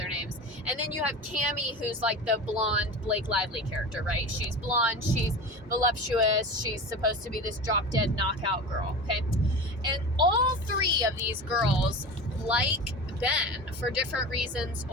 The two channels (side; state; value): both; normal; correlation 0.31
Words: names. And then you have Cammie, who's like the blonde Blake Lively character, right? She's blonde, she's voluptuous, she's supposed to be this drop-dead knockout girl, okay? And all three of these girls like Ben for different reasons